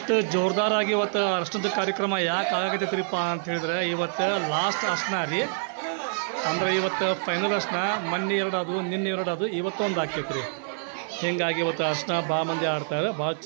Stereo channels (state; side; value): silent; left; 60 dB below the other